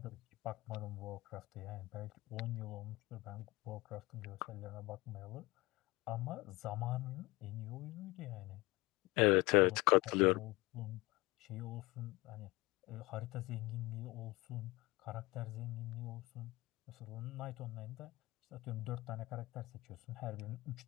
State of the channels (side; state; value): right; quieter; 21.4 dB